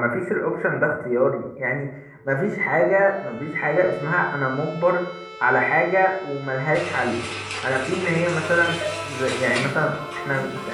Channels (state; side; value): identical; both; correlation 1.00